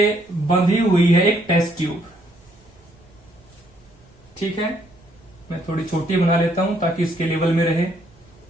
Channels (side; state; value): right; noise; rumble, 30 dB below the sound